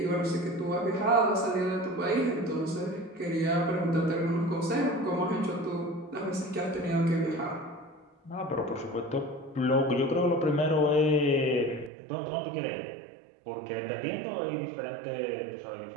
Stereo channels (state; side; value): drops out; left; at 11.9 s